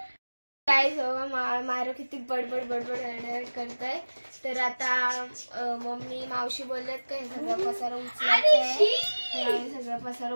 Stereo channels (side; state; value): both; inverted; correlation -1.00